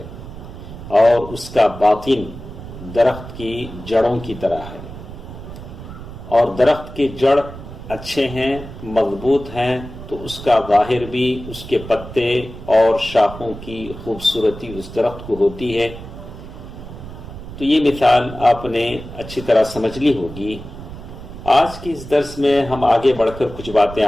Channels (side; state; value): right; noise; rumble, 13 dB below the sound